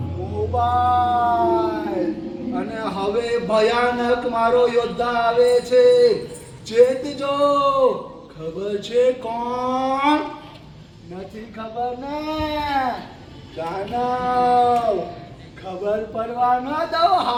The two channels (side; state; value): both; identical; correlation 1.00